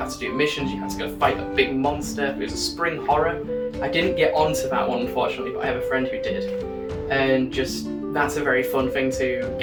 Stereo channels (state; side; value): identical; both; correlation 1.00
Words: to do missions, you have to go fight a big monster. It was a spring horror. I didn't get onto that one unfortunately, but I have a friend who did. And just, that's a very fun thing to